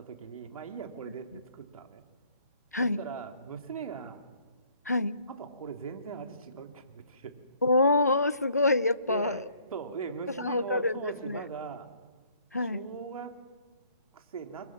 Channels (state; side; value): inverted; both; correlation -0.61